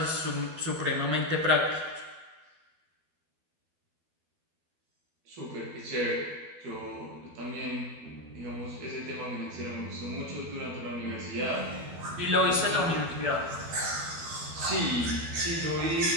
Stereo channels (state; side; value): late; left; 12 ms